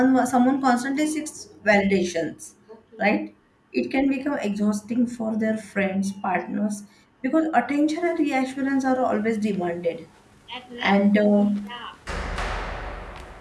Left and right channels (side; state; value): both; identical; correlation 1.00